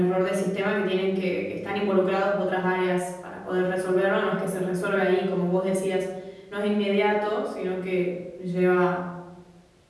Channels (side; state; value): both; identical; correlation 1.00